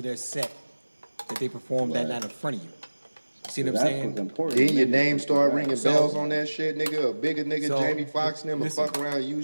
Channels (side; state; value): both; inverted; correlation -1.00